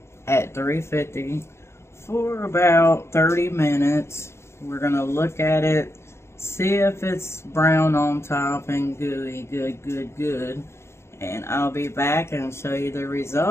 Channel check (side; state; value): right; late; 0.13 ms